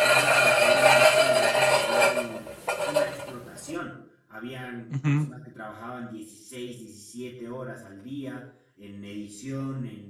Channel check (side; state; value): both; identical; correlation 1.00